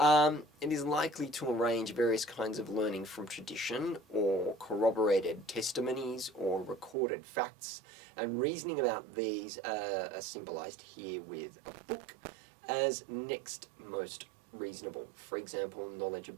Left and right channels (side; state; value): left; drops out; at 7.0 s